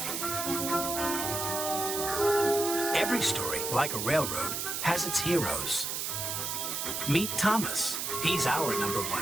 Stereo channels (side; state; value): right; noise; hiss, 2 dB below the sound